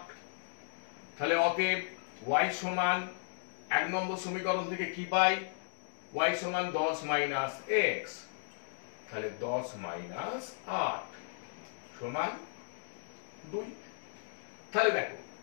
তাহলে অতএব y সমান 1 নম্বর সমীকরণ থেকে কি পাই? y সমান 10 মাইনাস x, তাহলে 10 মাইনাস 8 সমান 2। তাহলে দেখো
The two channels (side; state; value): right; silent; digital silence